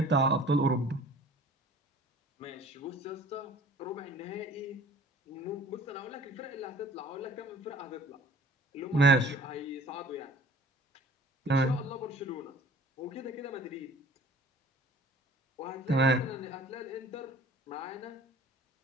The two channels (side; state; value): both; normal; correlation 0.49